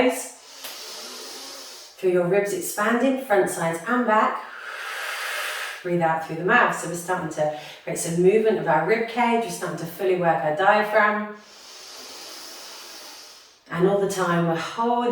Feel your ribs expanding, front, sides and back. Breathe out through the mouth. So we're starting to create some movement of our rib cage. We're starting to fully work our diaphragm. And all the time we're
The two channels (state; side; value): identical; both; correlation 1.00